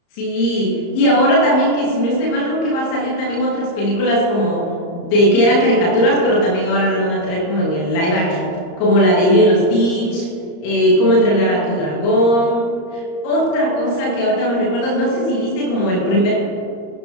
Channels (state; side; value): late; right; 34 ms